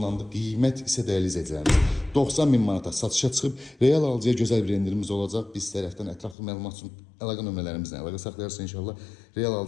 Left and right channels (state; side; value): drops out; right; at 6.4 s